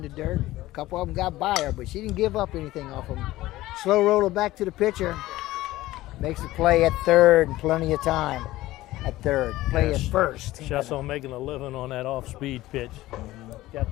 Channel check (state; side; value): quieter; right; 16.8 dB